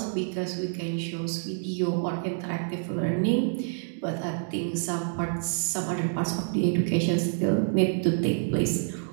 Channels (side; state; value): left; silent; digital silence